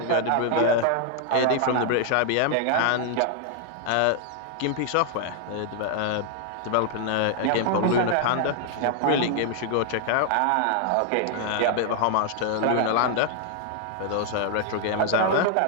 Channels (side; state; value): both; different; correlation 0.00